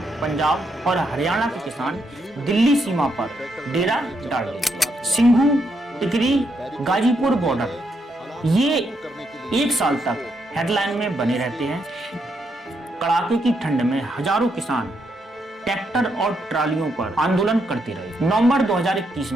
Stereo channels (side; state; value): both; normal; correlation 0.78